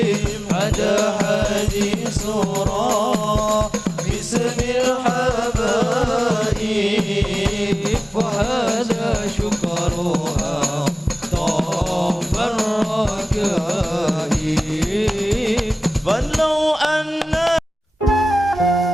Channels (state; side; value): normal; both; correlation 0.97